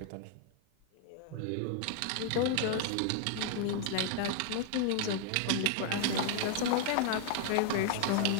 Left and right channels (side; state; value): both; different; correlation 0.00